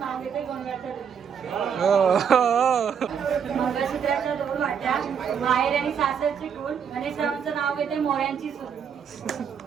नाव घेते गोंडवाच्या मंगळसूत्राच्या 2 वाट्या माहेर आणि सासरची कुल गणेशरावांचं नाव घेते मोऱ्यांची सून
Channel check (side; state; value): left; quieter; 7.4 dB